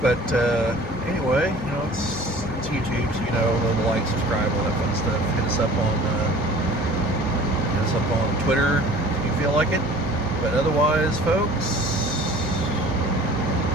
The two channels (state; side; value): normal; both; correlation 0.46